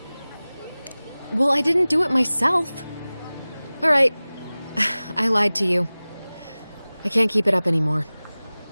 Well, I didn't do it myself. All right. I lied to you. I can't keep it up anymore.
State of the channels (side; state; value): both; inverted; correlation -0.99